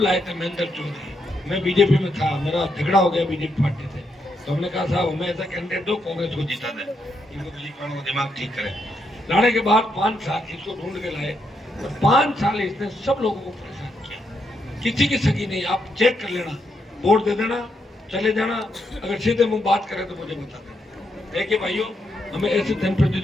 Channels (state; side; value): normal; both; correlation 0.80